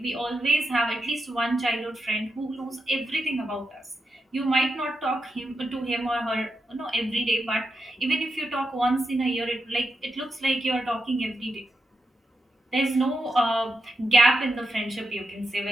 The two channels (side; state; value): both; normal; correlation 0.86